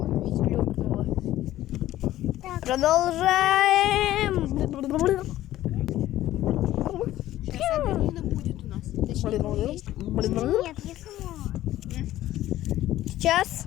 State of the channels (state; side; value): quieter; right; 14.3 dB